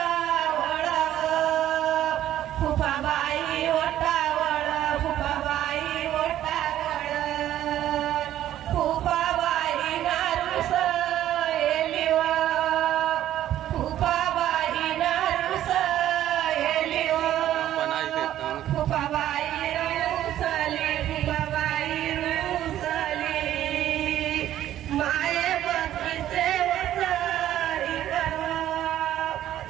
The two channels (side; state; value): left; quieter; 12.4 dB